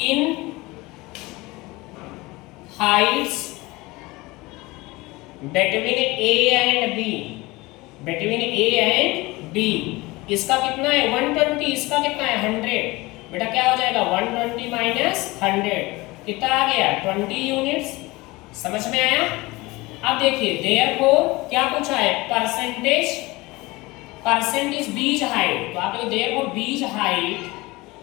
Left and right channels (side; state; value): right; quieter; 21.8 dB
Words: Heights between A and B, इसका कितना है 120, इसका कितना है 100। बेटा क्या हो जाएगा, 120 माइनस 100 कितना आ गया, 20 यूनिट्स। समझ में आया? अब देखिए, देयरफॉर क्या पूछा है, परसेंटेज बीज हाइट, तो आप लोग therefore B's height